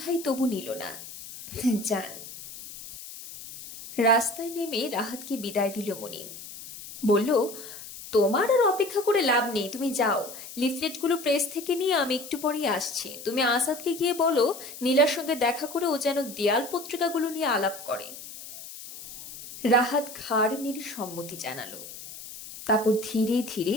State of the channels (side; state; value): left; noise; hiss, 13 dB below the sound